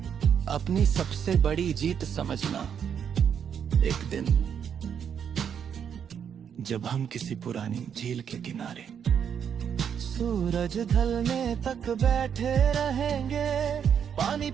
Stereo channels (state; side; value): quieter; left; 8.0 dB